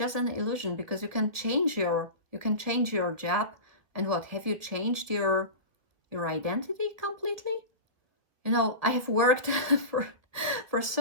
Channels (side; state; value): left; late; 1.5 ms